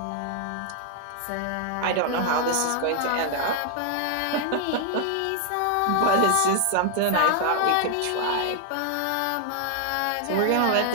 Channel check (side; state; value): both; different; correlation 0.00